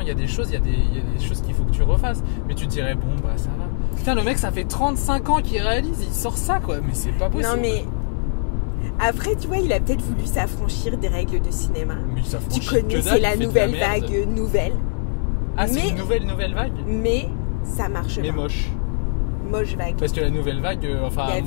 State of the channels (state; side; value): silent; right; 64 dB below the other